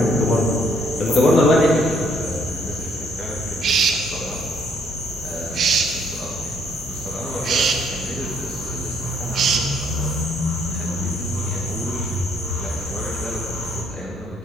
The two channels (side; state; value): both; normal; correlation 0.66